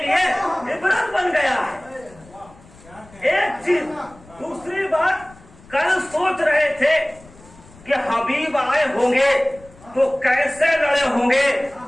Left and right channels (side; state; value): left; noise; rumble, 24 dB below the sound